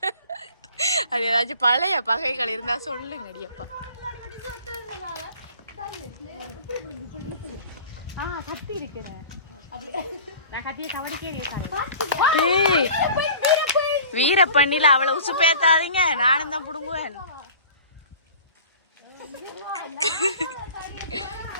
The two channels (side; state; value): both; inverted; correlation -0.44